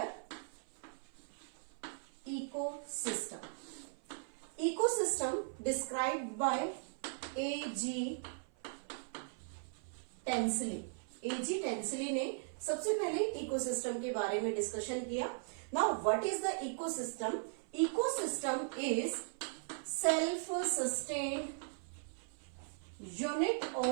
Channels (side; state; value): left; silent; 52 dB below the other